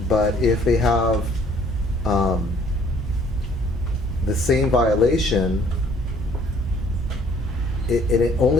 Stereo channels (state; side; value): normal; both; correlation 0.60